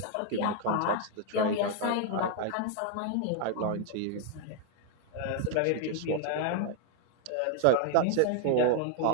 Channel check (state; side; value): different; both; correlation 0.00